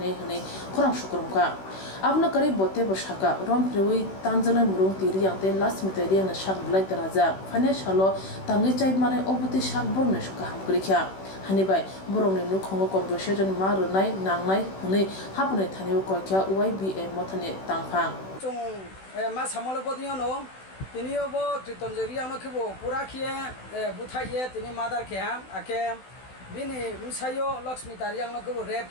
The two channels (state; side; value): late; right; 16 ms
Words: Hane Korang Shukrumka Abna Kari Bote Boshaka Rom Prewi Tanzana Murung Tiriang Te Last Miteria na Shak Black Daraja Panya Shalo Tangi Chai Mane Obuti Shak Borne Shuka Hamkrikya Hanibai Boromni Nukongo Conversation Marunai Nangnai Hune Hapune Tani Kokya YBA Motane Tangpang Chung ma samolo bodino no tinio bo tritonjeria no khibo pura khie buthaiye tini madar khe ake bini musayo lakshmi tariang no khibo rep